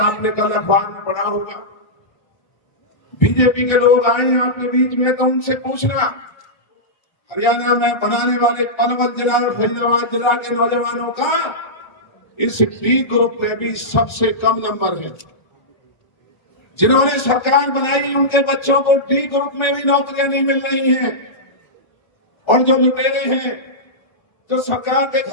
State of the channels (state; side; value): late; right; 1.4 ms